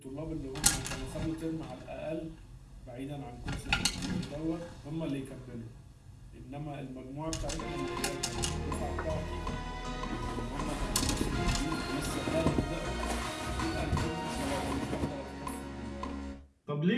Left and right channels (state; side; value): identical; both; correlation 1.00